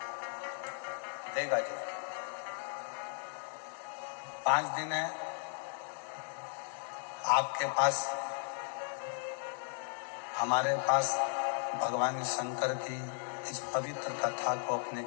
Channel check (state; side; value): silent; right; digital silence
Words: देगा जी। 5 दिन है आपके पास, हमारे पास भगवान शंकर की इस पवित्र कथा को अपने